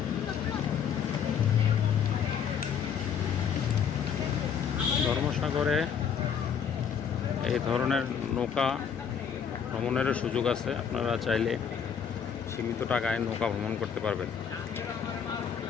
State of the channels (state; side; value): quieter; right; 7.5 dB